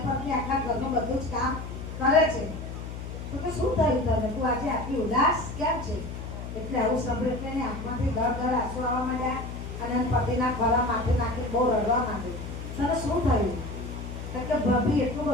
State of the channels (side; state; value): left; noise; hum, 8 dB below the sound